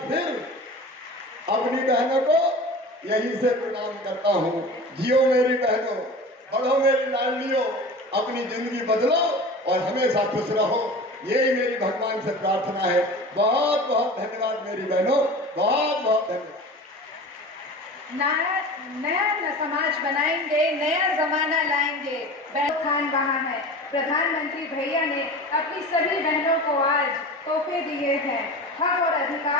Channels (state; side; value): normal; both; correlation 0.35